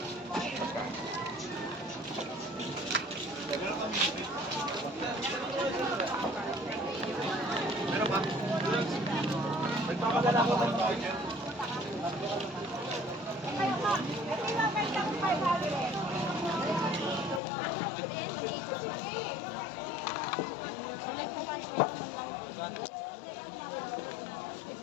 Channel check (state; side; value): drops out; right; at 17.4 s